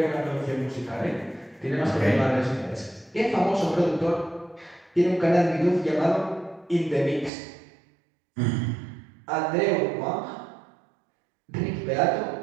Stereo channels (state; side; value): drops out; left; at 7.3 s